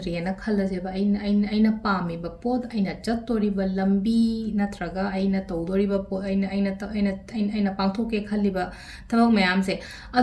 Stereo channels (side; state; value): both; identical; correlation 1.00